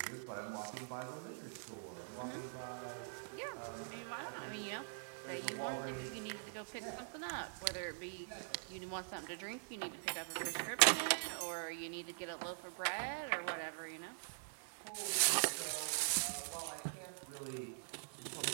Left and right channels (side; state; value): left; silent; digital silence